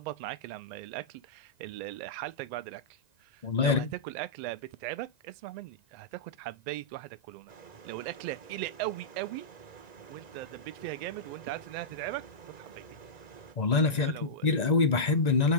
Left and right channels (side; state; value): right; late; 1.9 ms